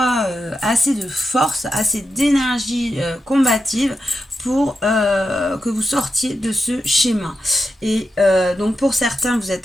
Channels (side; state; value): both; normal; correlation 0.88